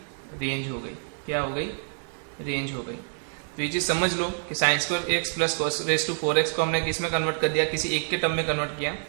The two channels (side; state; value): left; silent; 60 dB below the other